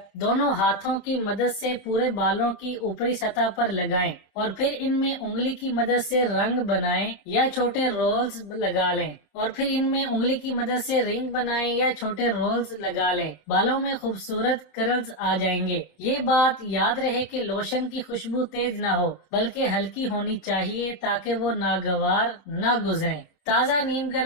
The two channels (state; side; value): late; right; 27 ms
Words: दोनों हाथों की मदद से पूरे बालों की ऊपरी सतह पर लगाएं और फिर इनमें उंगली की मदद से रंग बनाएं या छोटे रोल्स लगा लें और फिर इनमें उंगली की मदद से रिंग बनाएं या छोटे रोल्स लगा लें। बालों में खूबसूरत कर्ल्स आ जाएंगे। ये बात याद रहे कि लोशन की खुशबू तेज ना हो बल्कि हल्की होनी चाहिए ताकि वो नागवार ना गुजरे। ताज़ा नीम